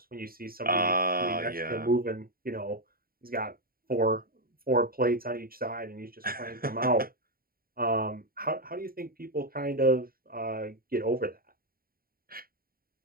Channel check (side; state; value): left; late; 0.43 ms